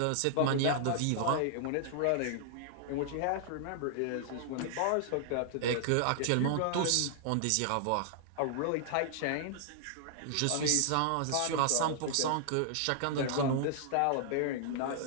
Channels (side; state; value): both; different; correlation -0.01